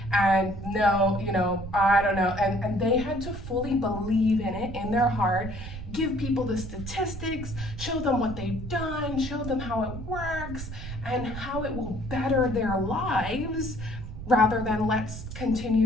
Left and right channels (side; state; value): right; noise; rumble, 9 dB below the sound